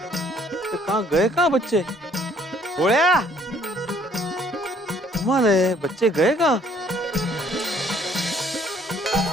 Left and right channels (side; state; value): both; normal; correlation 0.61